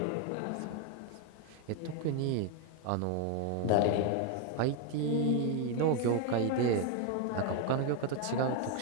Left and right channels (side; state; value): both; different; correlation 0.01